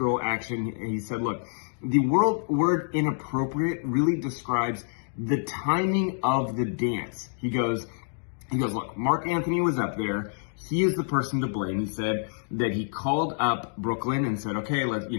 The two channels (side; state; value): right; silent; digital silence